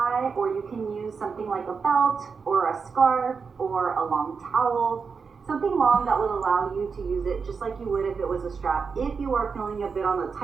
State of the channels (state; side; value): quieter; left; 5.4 dB